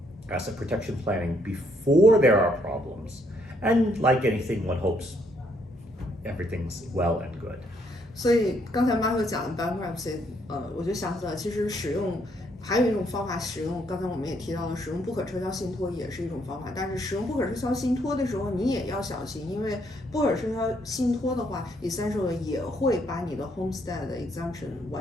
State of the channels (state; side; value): normal; both; correlation 0.70